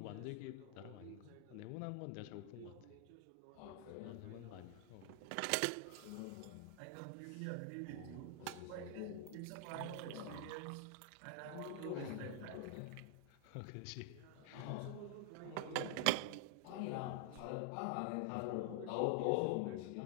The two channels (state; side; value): different; both; correlation 0.00